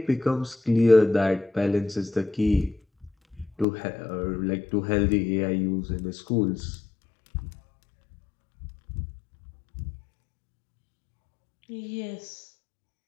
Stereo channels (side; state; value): right; drops out; at 3.7 s